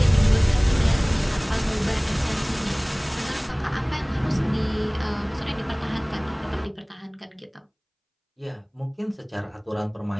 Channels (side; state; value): both; identical; correlation 1.00